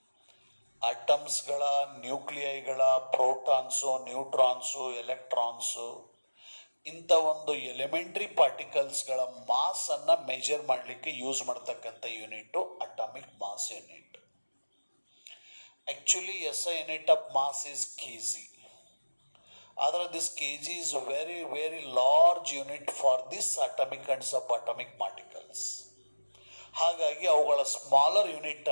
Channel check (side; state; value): both; inverted; correlation -1.00